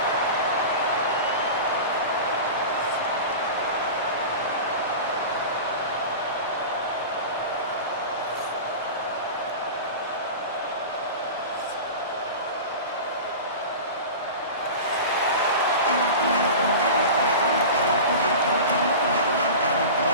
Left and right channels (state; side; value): inverted; both; correlation -0.31